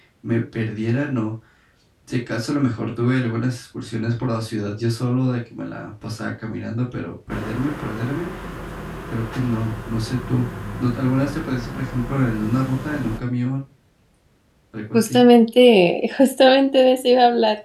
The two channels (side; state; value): both; identical; correlation 1.00